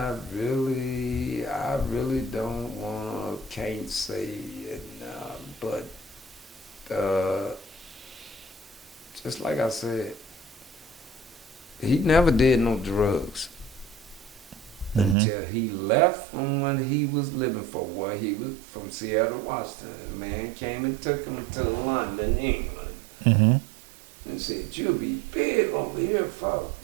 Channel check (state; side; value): drops out; left; at 15.2 s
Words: really don't can't say it, but just like I said, he never did no drugs until he left from when he was living for where he was from Seattle, Washington. A man came and took him to London, England, and said, "You'll be big over here, fuck."